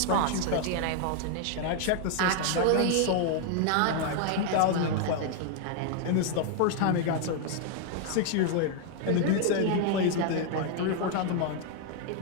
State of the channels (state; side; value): different; both; correlation 0.00